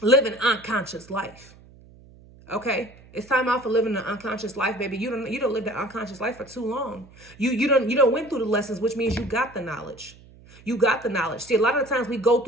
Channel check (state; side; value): noise; right; hum, 23 dB below the sound